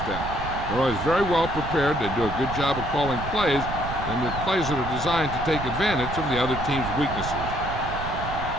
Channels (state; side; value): noise; right; rumble, 7 dB below the sound